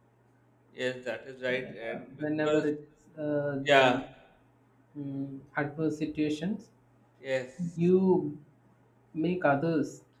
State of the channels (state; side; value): identical; both; correlation 1.00